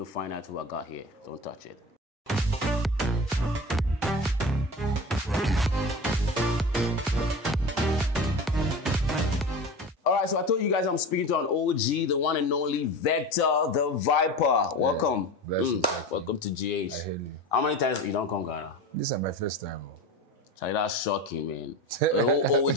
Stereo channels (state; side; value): normal; both; correlation 0.30